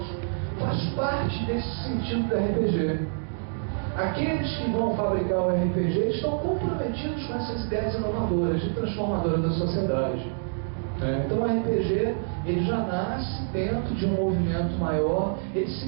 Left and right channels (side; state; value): left; silent; digital silence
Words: faz parte desse sentido do RPG. Aqueles que vão fabricar o RPG estão comprometidos com essas ideias inovadoras, de transformadora da sociedade. Então o RPG ele já nasce dentro de um movimento maior, ele